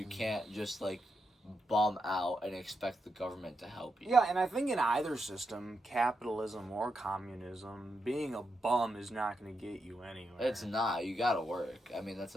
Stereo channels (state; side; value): normal; both; correlation 0.84